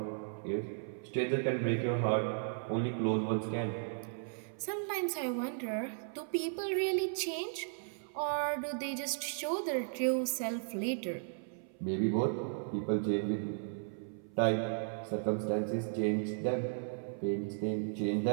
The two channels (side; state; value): left; silent; 54 dB below the other